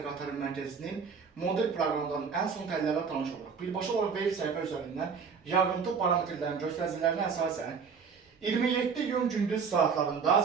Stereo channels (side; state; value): left; quieter; 5.8 dB